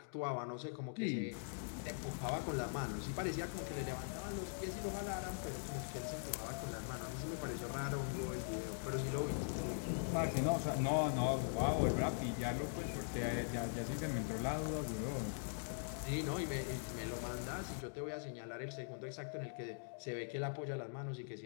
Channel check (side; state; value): right; silent; digital silence